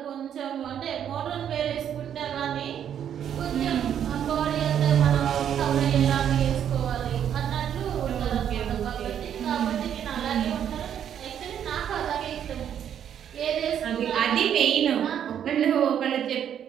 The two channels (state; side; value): quieter; left; 9.4 dB